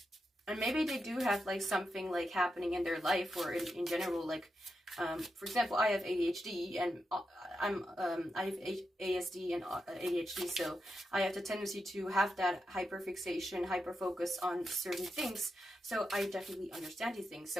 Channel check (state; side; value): normal; both; correlation 0.86